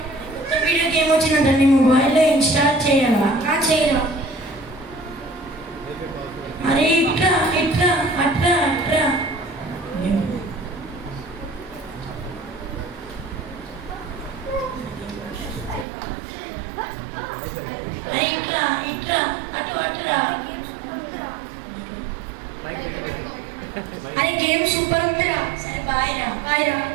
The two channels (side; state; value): left; drops out; at 15.9 s